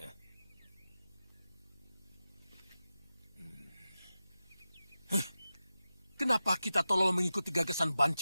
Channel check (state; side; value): inverted; both; correlation -0.94